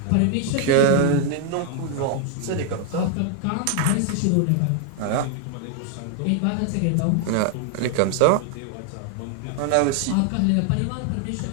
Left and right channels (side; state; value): both; different; correlation 0.00